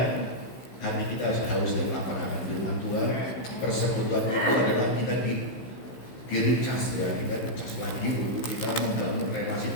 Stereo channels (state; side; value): late; right; 15 ms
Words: hati kita haus dan lapar akan firman Tuhan. Persekutuan itu adalah kita diricas ya, kita dicas lagi untuk kita membangun relasi